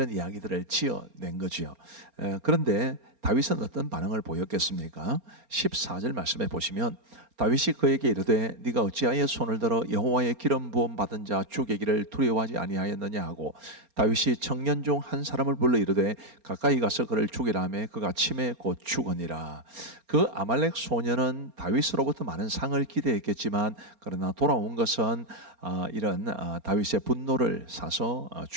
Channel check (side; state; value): left; late; 4.3 ms